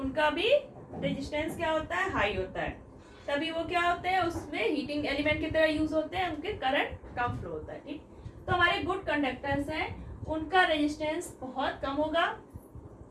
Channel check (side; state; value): both; identical; correlation 1.00